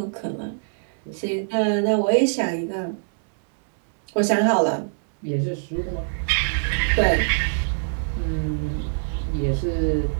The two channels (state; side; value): silent; left; 63 dB below the other